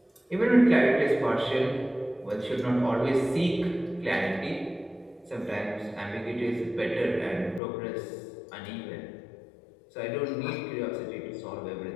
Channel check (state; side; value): drops out; right; at 7.6 s